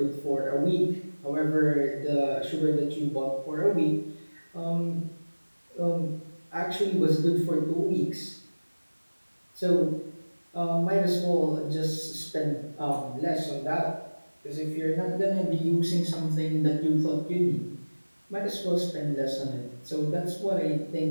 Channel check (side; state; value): both; inverted; correlation -1.00